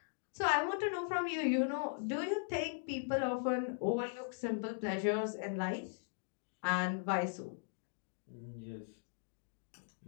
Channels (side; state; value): right; silent; digital silence